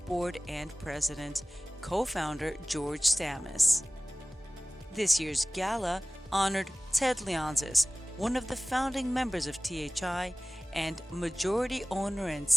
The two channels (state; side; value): normal; both; correlation 0.98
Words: Board and President, Co-founder George Stamis. This year's gala honored Ted Leonsis, one of the founding members of THI and majority owner and